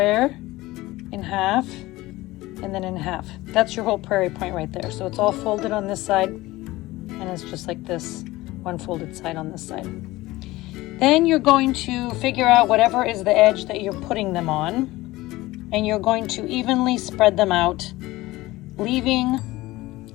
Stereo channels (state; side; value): quieter; right; 18.7 dB